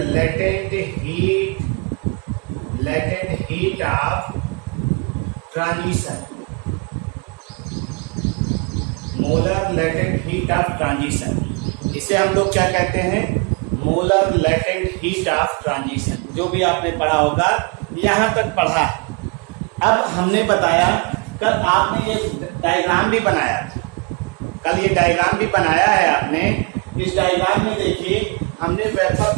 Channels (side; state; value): left; quieter; 33.5 dB